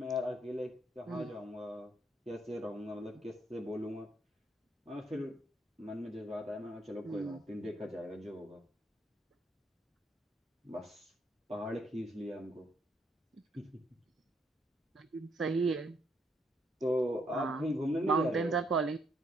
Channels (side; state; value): both; normal; correlation 0.72